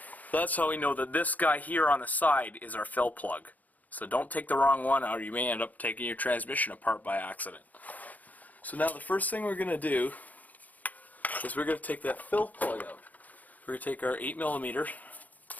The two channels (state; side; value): late; right; 0.079 ms